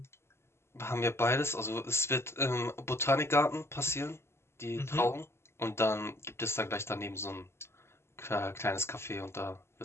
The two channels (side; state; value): right; late; 0.12 ms